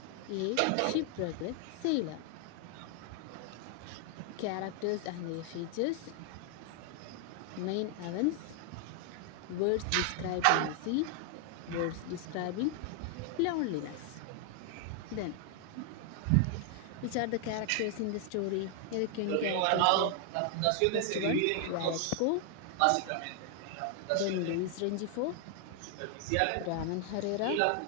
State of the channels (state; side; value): different; both; correlation 0.00